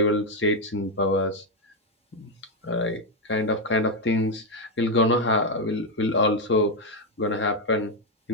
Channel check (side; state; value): both; normal; correlation 0.04